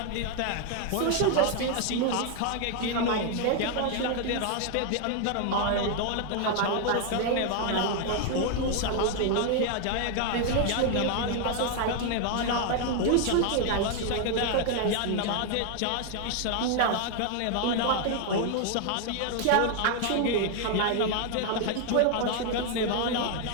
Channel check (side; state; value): both; different; correlation 0.00